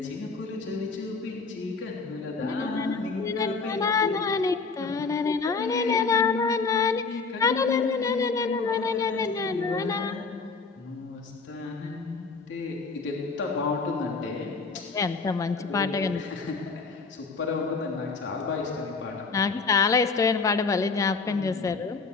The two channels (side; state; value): right; quieter; 4.5 dB